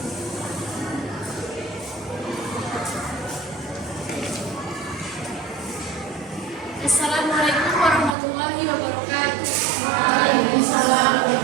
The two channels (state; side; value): drops out; left; at 8.2 s